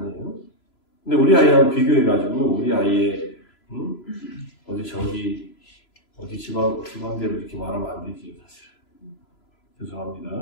근데 우리 아이하고 비교해가지고 우리 아이의 어디 지방대로 이렇게 말하면 안 되지 사실.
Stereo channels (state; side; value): late; right; 3.0 ms